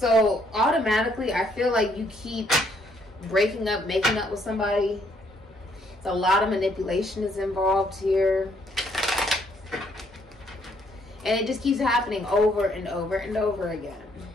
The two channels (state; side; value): normal; both; correlation 0.69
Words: automatically I feel like you keep breaking up, making up with somebody. So a lot of manipulation is involved here. And it just keeps happening over and over and over again.